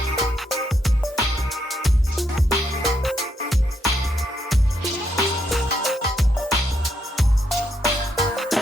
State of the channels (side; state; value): both; normal; correlation 0.77